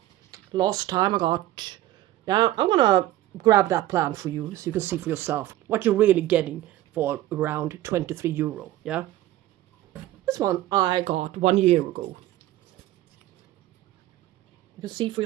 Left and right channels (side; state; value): left; quieter; 14.7 dB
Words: Last time I got, now I'm gonna grab that plant for you so you can see for yourself what you're really getting for around €23, yeah? This one I got 1 year ago. You can see for